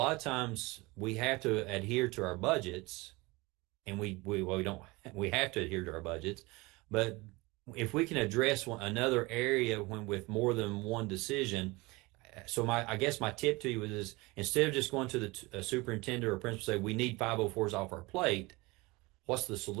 of times we have to adhere to our budgets, and we have to adhere to our budgets. But if we can address another area with more than one decision, so I guess my tip to you is instead of just going to the superintendent or principal say we need 504s off our plate, what's the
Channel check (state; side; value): quieter; left; 23.5 dB